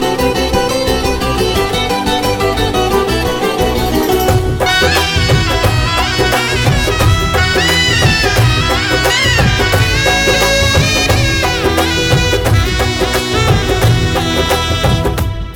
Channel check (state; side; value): identical; both; correlation 1.00